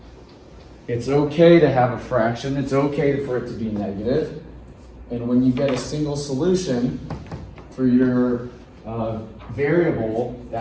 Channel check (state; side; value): identical; both; correlation 1.00